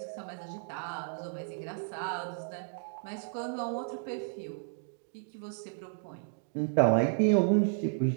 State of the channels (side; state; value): left; silent; digital silence